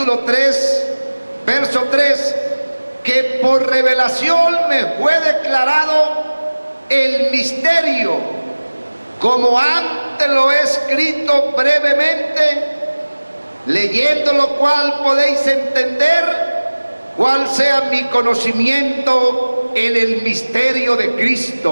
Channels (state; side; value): inverted; both; correlation -1.00